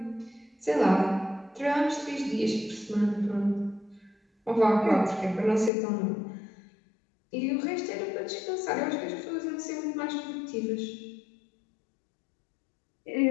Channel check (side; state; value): right; drops out; at 5.7 s